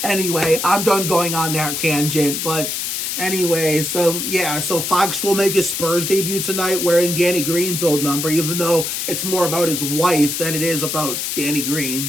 anyway, I'm done going on that tangent. But anyway, so Fox will make his Spurs debut tonight wearing Danny Green's old number, even though it's more about his wife than it is about Danny Green.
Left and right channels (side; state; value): left; noise; hiss, 2 dB below the sound